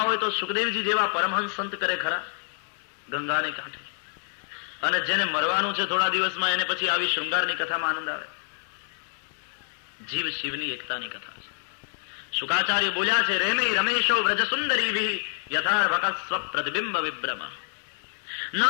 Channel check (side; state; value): right; silent; digital silence